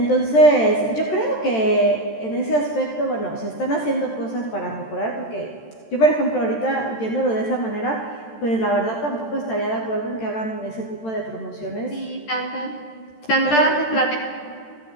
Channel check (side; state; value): right; late; 13 ms